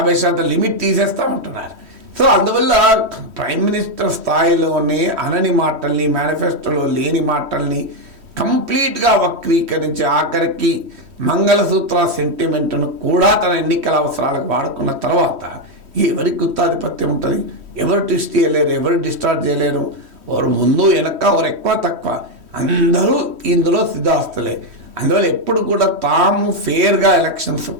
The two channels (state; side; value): late; left; 3.1 ms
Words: లిమిట్ తీసేస్తామంటున్నారు. సో అందువల్ల ప్రైమ్ మినిస్టర్ స్థాయిలోనే అనని మాటల్ని, మేనిఫెస్టోలో లేని మాటల్ని కంప్లీట్గా వక్రీకరించి ఆఖరికి మంగళసూత్ర సెంటిమెంట్ను కూడా తన ఎన్నికల అవసరాలకు వాడుకున్న తర్వాత ఎవరికి గుత్తాధిపత్యం ఉంటుంది? ఎవరు ట్విస్ట్ చేయలేరు, ఎవరు డిస్టార్ట్ చేయలేరు. ఎవరు ముందు వెనక, ఎవరు ఎక్కువ తక్కువ, అందరూ ఇందులో సిద్ధాస్తులే. అందువల్ల ఎప్పుడు కూడా తాము ఫేర్గా ఎలక్షన్స్